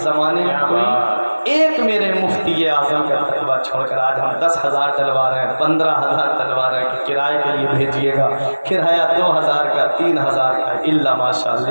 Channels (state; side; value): inverted; both; correlation -1.00